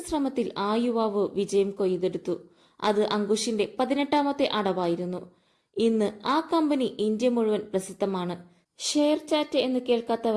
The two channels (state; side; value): identical; both; correlation 1.00